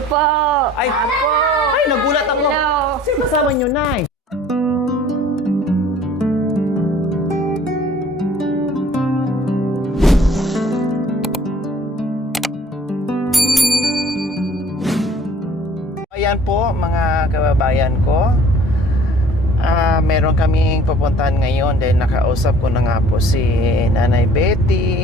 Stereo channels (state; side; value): normal; both; correlation 0.52